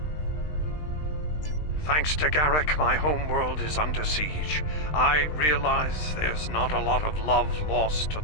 Thanks to Garrick, my homeworld is under siege. I realize there's not a lot of love lost to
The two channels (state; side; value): late; right; 20 ms